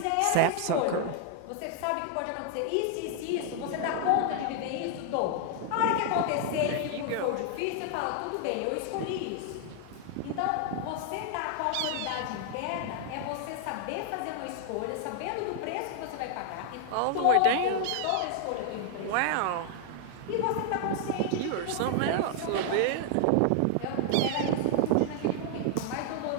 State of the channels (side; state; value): both; different; correlation 0.00